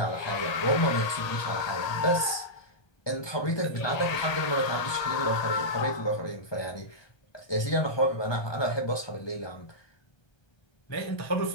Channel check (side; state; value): right; late; 1.2 ms